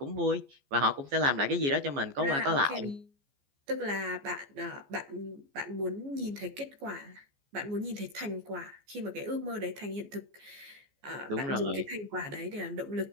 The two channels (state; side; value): late; left; 14 ms